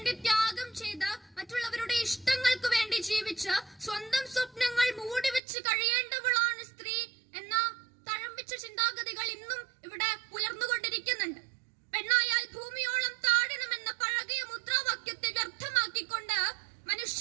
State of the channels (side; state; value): left; drops out; at 5.4 s